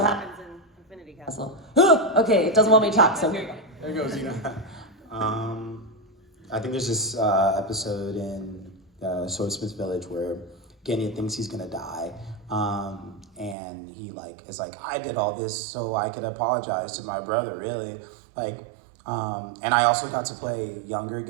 happens in Infinity Castle. Okay, it doesn't want me to talk, so here you go. There goes Zeno. I think there's this episode in Swordsmith Village where Genya thinks he's gonna die, and he is like, I did all this so I could apologize to my brother, really, and I also got to play younger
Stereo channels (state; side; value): drops out; left; at 13.6 s